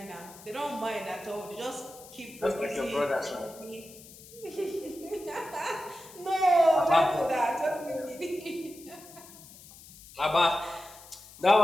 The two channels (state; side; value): noise; left; hiss, 19 dB below the sound